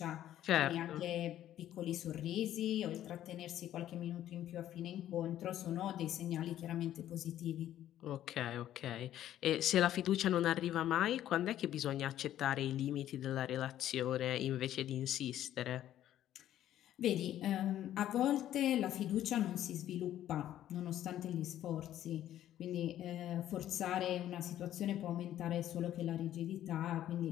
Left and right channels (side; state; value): right; quieter; 12.1 dB